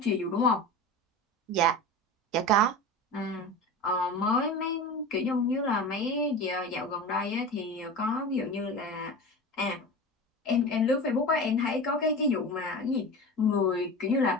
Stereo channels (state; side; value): normal; both; correlation 0.30